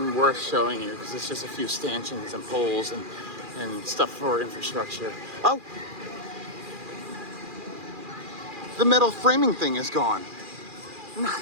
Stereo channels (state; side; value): late; left; 2.4 ms